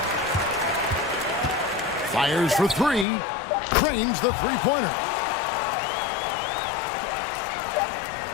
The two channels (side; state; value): right; drops out; at 3.1 s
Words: Fires for three. Cranes the three-pointer.